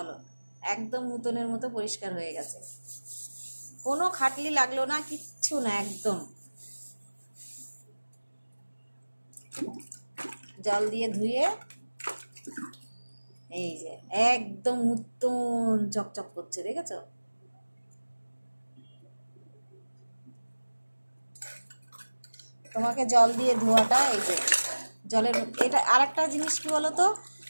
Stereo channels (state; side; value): inverted; both; correlation -1.00